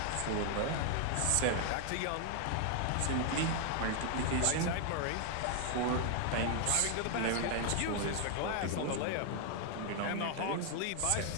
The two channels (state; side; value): different; both; correlation 0.00